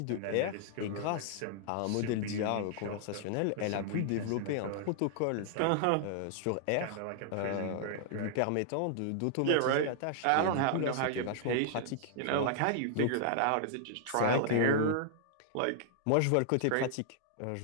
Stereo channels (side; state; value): both; different; correlation -0.01